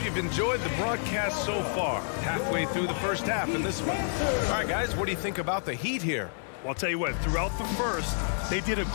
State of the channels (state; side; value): silent; right; digital silence